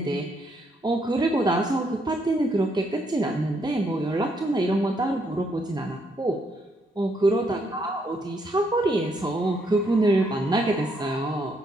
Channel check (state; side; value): normal; both; correlation 0.74